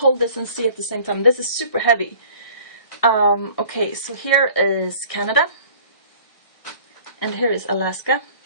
this and see at the same time. This is super heavy. Okay, so here is Canada, and here is Alaska,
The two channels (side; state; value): right; late; 1.6 ms